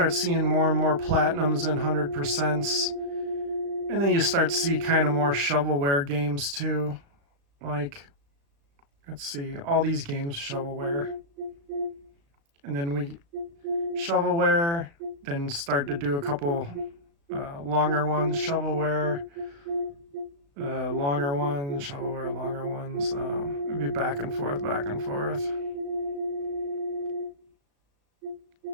seeing more and more platinums and 100%s, and then you start to see kind of more shovelware games too. Like, let's see, all these games shovelware, and then we shovelware, then start to do a couple longer ones, shovelware, longer ones, shovelware, longer ones. It'd be back and forth, back and forth.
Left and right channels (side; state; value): left; late; 36 ms